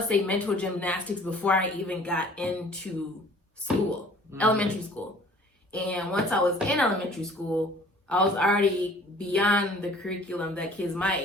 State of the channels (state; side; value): normal; both; correlation 0.51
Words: say mental gymnastics before I even got into school, elementary school. And once I was in elementary school, I was already beyond the curriculum that kids my